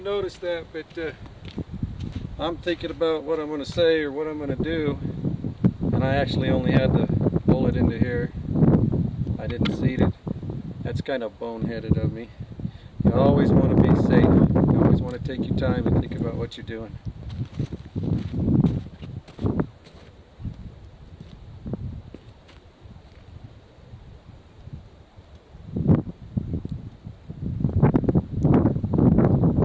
noticed that, but I'm thinking about what I'm going to say or what I'm going to do, and I actually only had the bullet into here. I didn't seat it. That's kind of boneheaded of me. You always want to be safe. You always want to take your time and think about what you're doing.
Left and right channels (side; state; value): both; identical; correlation 1.00